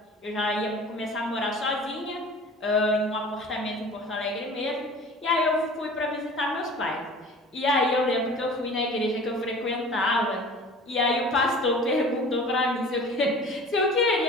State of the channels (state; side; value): normal; both; correlation 0.42